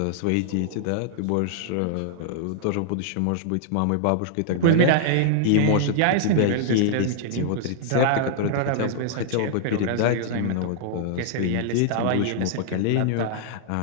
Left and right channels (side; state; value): both; different; correlation -0.01